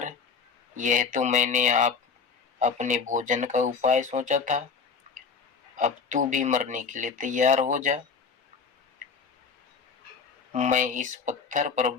यह तो मैंने आप अपने भोजन का उपाय सोचा था। अब तू भी मरने के लिए तैयार हो जा। मैं इस पत्थर पर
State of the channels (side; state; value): right; quieter; 5.5 dB